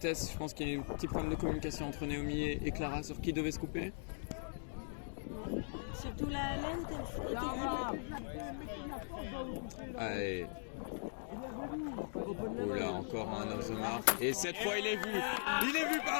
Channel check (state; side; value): silent; right; digital silence